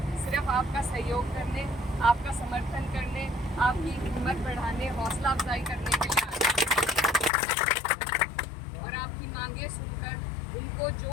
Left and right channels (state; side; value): drops out; right; at 7.3 s